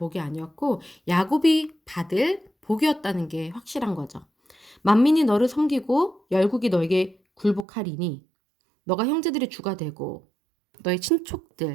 아니었고 야곱이 받을 복이었다는 게 확실한 거죠. 만민이 너를 섬기고 열국이 너에게 굴복하리니 너가 형제들의 주가 되고 너의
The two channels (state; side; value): drops out; left; at 7.7 s